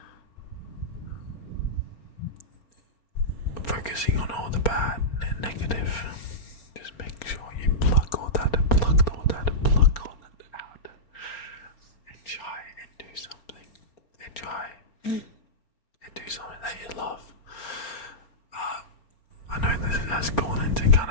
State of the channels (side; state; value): right; late; 4.3 ms